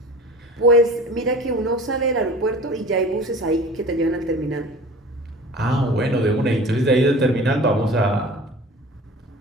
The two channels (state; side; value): normal; both; correlation 0.40